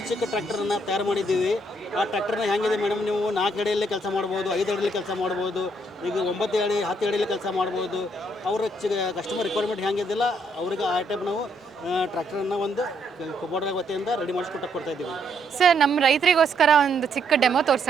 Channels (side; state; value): both; normal; correlation 0.72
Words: ಟ್ರ್ಯಾಕ್ಟರನ್ನು ತಯಾರು ಮಾಡಿದ್ದೀವಿ. ಆ ಟ್ರ್ಯಾಕ್ಟರ್ನ ಹೆಂಗಿದೆ ಮೇಡಮ್, ನೀವು 4 ಅಡಿಯಲ್ಲೇ ಕೆಲಸ ಮಾಡ್ಬೋದು, 5 ಅಡಿಯಲ್ಲಿ ಕೆಲಸ ಮಾಡ್ಬೋದು, ಈಗ 9 ಅಡಿ 10 ಅಡಿಯಲ್ಲಿ ಕೆಲಸ ಮಾಡ್ಬೋದು. ಅವರ ಕಸ್ಟಮರ್ ರಿಕ್ವೈರ್ಮೆಂಟ್ ಹೆಂಗಿದಿಲ್ಲ ಅವ್ರಿಗೆ ಆ ಟೈಪ್ ನಾವು ಟ್ರ್ಯಾಕ್ಟರನ್ನು ಒಂದು ಕುಬೋಟ ವತಿಯಿಂದ ರೆಡಿ ಕೊಡ್ತಾ ಇದ್ದೀವಿ. ಸರ್ ನಮ್ಮ ರೈತರಿಗೋಸ್ಕರ ಒಂದು ಚಿಕ್ಕ ಡೆಮೋ